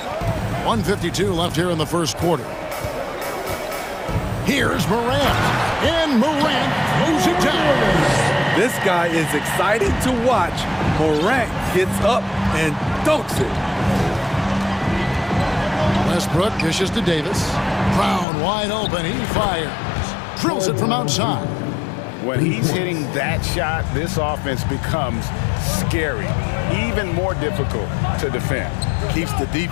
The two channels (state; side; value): drops out; right; at 18.2 s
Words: 1:52 left here in the first quarter. Here's Morant, and Morant throws it down. This guy is excited to watch. Morant gets up and dunks it. Westbrook dishes to Davis. Brown wide open, he fires. Drills it from outside. When he's hitting that shot, this offense becomes scary, even more difficult to defend. Keeps the